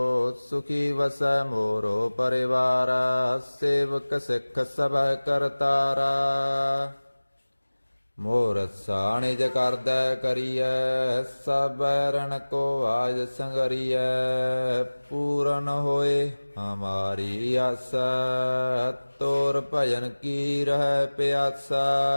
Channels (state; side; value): inverted; both; correlation -1.00